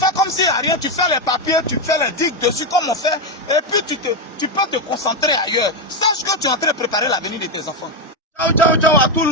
comme s'il n'y a rien. Tu fais les papiers, tu fais les digues dessus comme on fait. Et puis tu peux te concentrer ailleurs. Sache que tu es en train de préparer l'avenir de tes enfants. Ciao, ciao, ciao à tout le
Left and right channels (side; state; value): both; normal; correlation 0.08